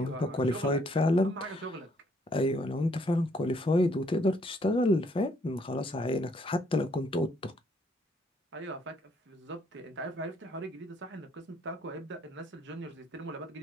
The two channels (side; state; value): both; normal; correlation 0.68